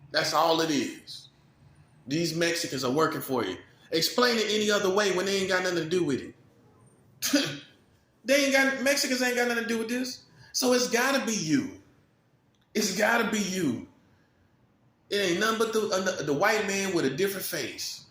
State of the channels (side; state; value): both; identical; correlation 1.00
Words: That's all it is. These Mexicans are working for you. Explain it any other way when they ain't got nothing to do with it. Mexicans ain't got nothing to do with this. So it's gotta be you. It's gotta be you. It ain't nothing but the white man with a different face.